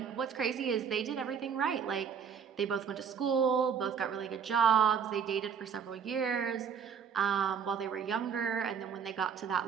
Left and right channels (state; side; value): quieter; left; 7.0 dB